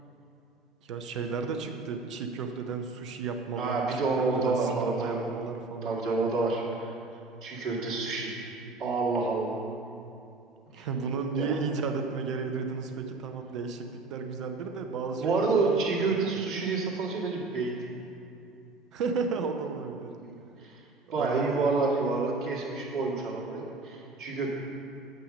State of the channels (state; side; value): quieter; left; 3.6 dB